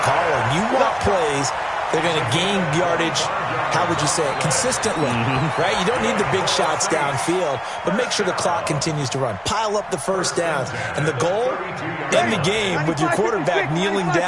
You want plays that are going to gain yardage, how would you say it, consistently, right? You don't need the big shots downfield, but make sure the clock continues to run. Pile up the first downs. And the goal, end the game with your quarterback kneeling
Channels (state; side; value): identical; both; correlation 1.00